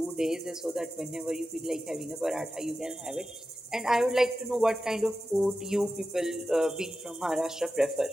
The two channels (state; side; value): normal; both; correlation 0.92